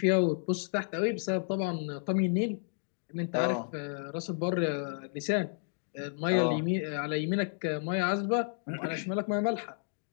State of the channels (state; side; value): silent; right; digital silence